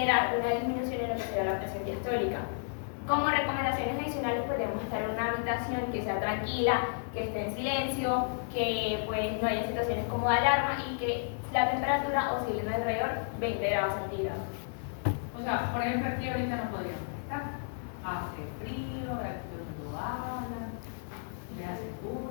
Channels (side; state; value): right; silent; digital silence